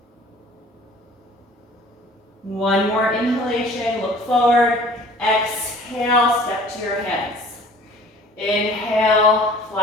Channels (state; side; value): normal; both; correlation 0.49